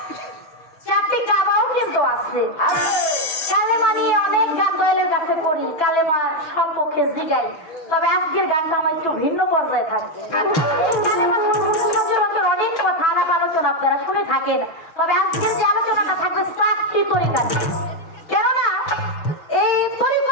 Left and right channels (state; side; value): late; right; 6.1 ms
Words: 4টি কাবাও কিন্তু আছে। কালেমা নিয়ে অনেক গান দয়ালের কাছে করি, কালেমা সম্পর্কে জিগাই। তবে আজকের গানটা আমার একটু ভিন্ন পর্যায়ে থাকবে। এই কালেমা সম্পর্কে সচরাচর অনেক কথা আলাপ আলোচনা আপনারা শুনে থাকেন, তবে আজকের যে আলোচনাটা থাকবে 4টি তরিকা। কেননা এই